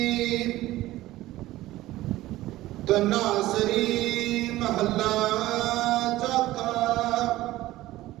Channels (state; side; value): quieter; left; 16.4 dB